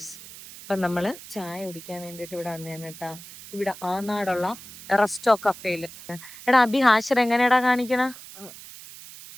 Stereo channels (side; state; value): right; noise; hiss, 16 dB below the sound